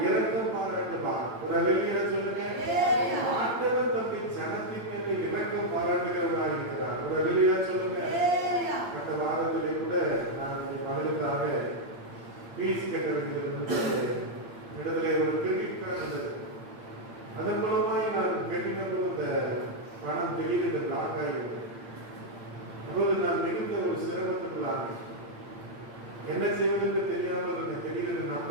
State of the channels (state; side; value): late; left; 8.7 ms